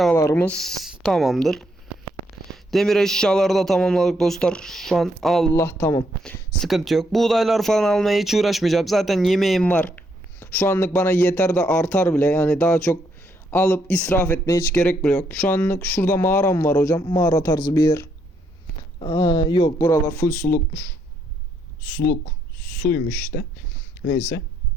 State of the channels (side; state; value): both; normal; correlation 0.74